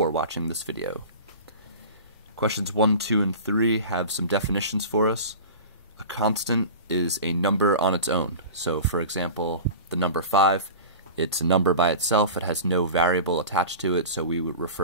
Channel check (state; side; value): inverted; both; correlation -0.35